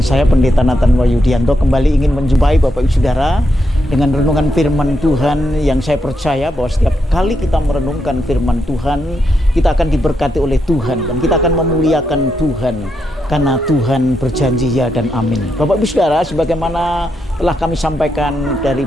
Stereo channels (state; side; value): normal; both; correlation 0.82